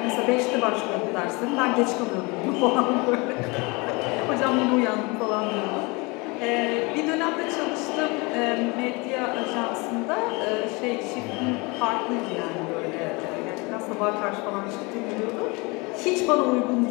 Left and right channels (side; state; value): right; quieter; 27.0 dB